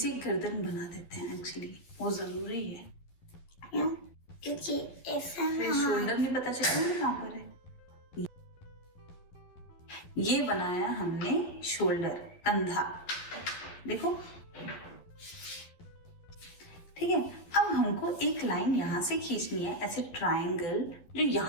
गर्दन बना देते हैं, एक्चुअली वो जरूरी है, क्यों? क्योंकि ऐसा फिर शोल्डर नहीं पता चलेगा कहाँ पर है। ये बनाया हमने शोल्डर, कंधा, देखो। ठीक है, अब हमको एक लाइन यहाँ से खींचनी है, ऐसे ट्रायंगल, जो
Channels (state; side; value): late; right; 11 ms